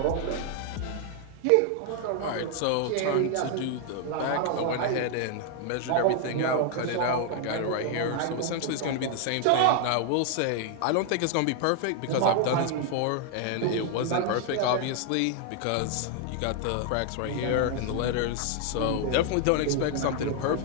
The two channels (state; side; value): different; both; correlation 0.00